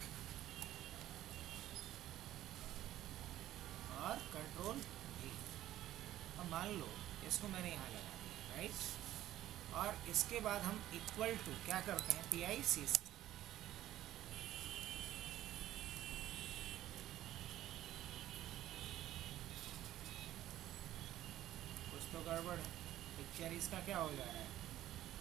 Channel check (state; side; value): quieter; left; 13.5 dB